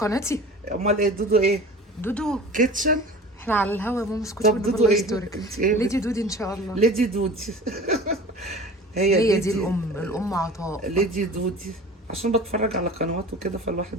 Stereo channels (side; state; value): both; normal; correlation 0.40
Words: امال ايه دودو ايه؟ دودو. كيتشن. احنا على الهوا يا ماما، اسكتي طب والنبي دودو الله ايه؟ يسترك. انت ايه ليدي دودي ان شاء الله. ليدي دودي. هي هي دي ليدي. الام عطاء. ليدي دودي. عشان بتفرج على قنوات وكده